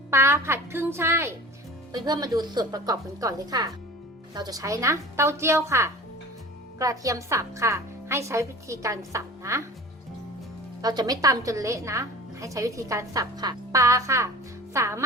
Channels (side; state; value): both; normal; correlation 0.40